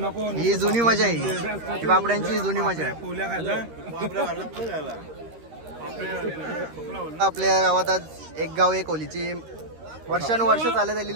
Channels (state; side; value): late; left; 13 ms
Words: ही जुनी मजा आहे, ही बापड्यांची जुनी मजा आहे। आपल्या गावात आज एक गाव एक होलीची वर्षानुवर्ष चालत